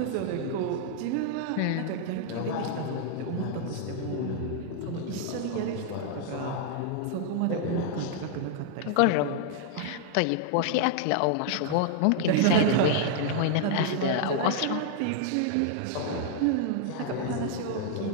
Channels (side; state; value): both; different; correlation 0.00